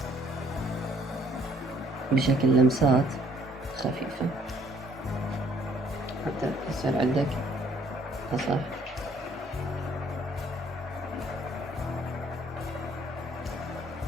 بشكل لمسات خفيفة حتى يصير عندك أصح.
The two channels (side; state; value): both; normal; correlation 0.62